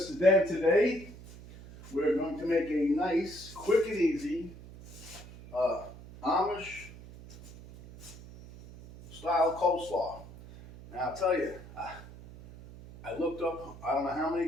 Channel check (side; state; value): right; noise; hum, 17 dB below the sound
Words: Dan. Today, we're going to make a nice, quick and easy Amish style coleslaw. Now, I'll tell you, I looked up, I don't know how